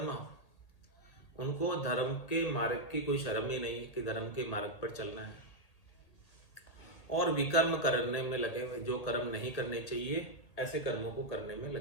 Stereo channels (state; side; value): late; right; 1.8 ms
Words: उनको धर्म के मार्ग की कोई शर्म ही नहीं है कि धर्म के मार्ग पर चलना है, और विकर्म करने में लगे हुए, जो कर्म नहीं करने चाहिए ऐसे कर्मों को करने में